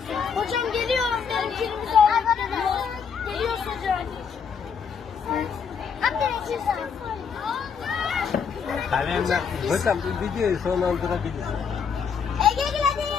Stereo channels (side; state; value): right; quieter; 6.5 dB